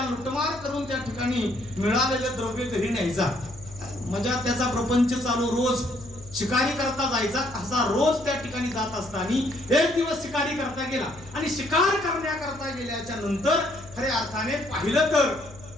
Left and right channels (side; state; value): left; noise; hum, 20 dB below the sound